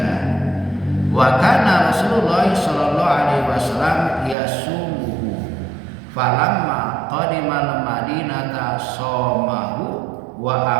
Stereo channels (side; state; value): left; drops out; at 4.4 s